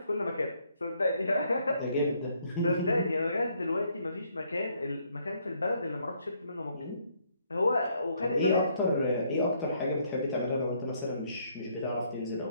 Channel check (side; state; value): both; inverted; correlation -0.69